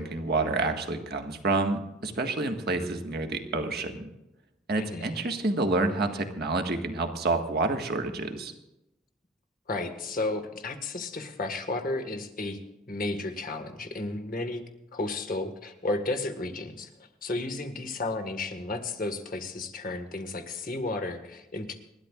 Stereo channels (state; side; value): normal; both; correlation 0.33